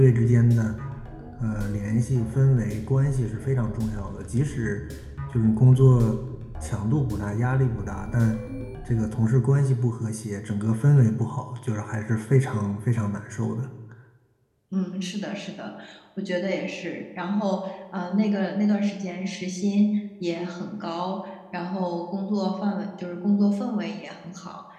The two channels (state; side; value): identical; both; correlation 1.00